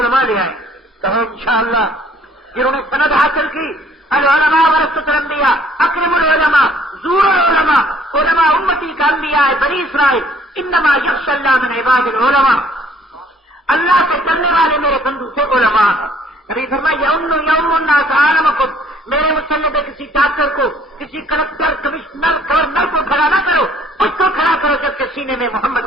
لے آئے. کہو انشاءاللہ. جنہوں نے سند حاصل کی العلماء ورثۃ الانبیاء، اکرم العلماء، زور العلماء، علماء امتی کا انبیاء بنی اسرائیل، انما یخشی اللہ من عباد العلماء. اللہ سے ڈرنے والے میرے بندو سے علماء ہیں. نبی فرمایا یوم الناس عالمکم، میرے مسلم کسی ڈاکٹر کو، کسی کلکٹر، کمشنر، گورنر کو کھڑا نہ کرو، اس کو کھڑا کرو جب کہ سینے میں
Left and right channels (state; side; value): normal; both; correlation 0.60